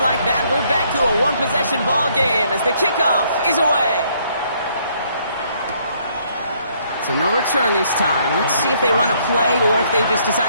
like that, we're back to a one-possession ball game as the kickoff is away. So no return this time. Let's see if they run a play or if they just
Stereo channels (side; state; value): both; inverted; correlation -0.67